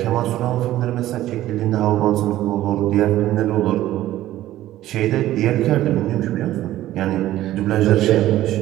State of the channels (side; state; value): left; quieter; 14.3 dB